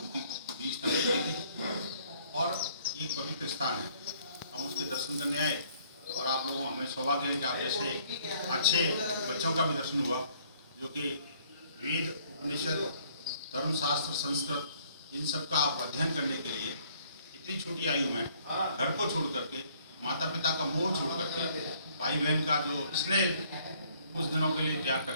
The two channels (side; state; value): both; inverted; correlation -0.62